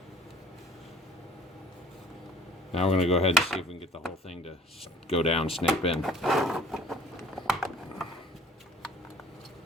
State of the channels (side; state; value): both; normal; correlation 0.52